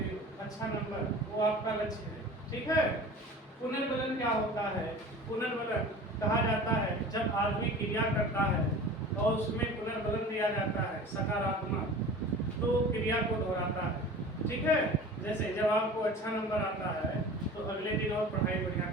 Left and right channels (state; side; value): normal; both; correlation 0.39